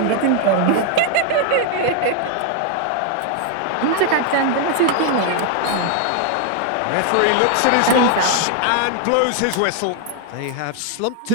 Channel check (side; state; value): both; different; correlation 0.00